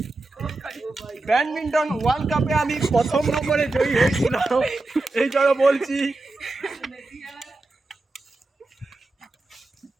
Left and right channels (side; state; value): left; quieter; 3.0 dB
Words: ব্যাডমিন্টন ওয়ার্ল্ড কাপে আমি প্রথম নম্বরে জয়ী হয়েছিলাম। এই জন্য বলছি